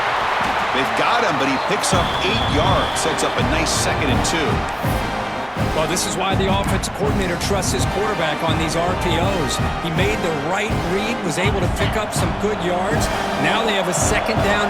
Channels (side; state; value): both; identical; correlation 1.00